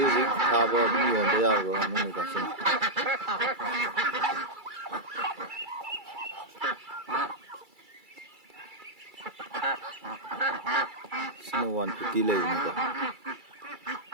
ꯊꯥꯕ ꯑꯗꯨꯝ ꯌꯣꯟꯕ ꯌꯥꯔꯕ ꯉꯥꯅꯨꯅꯤꯀꯣ ꯁꯤꯅ. ꯁꯤꯅ 150 ꯂꯩꯕꯅꯤꯀꯣ.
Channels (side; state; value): left; late; 2.3 ms